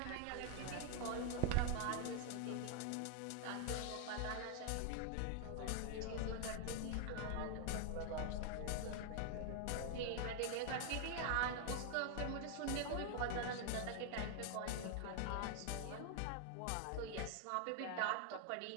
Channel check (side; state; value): both; different; correlation 0.00